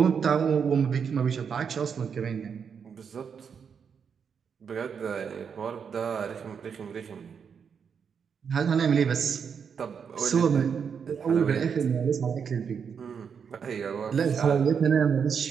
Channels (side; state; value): left; quieter; 6.8 dB